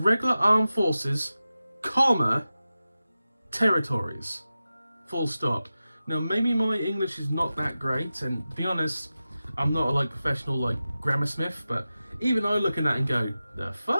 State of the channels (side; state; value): both; inverted; correlation -0.94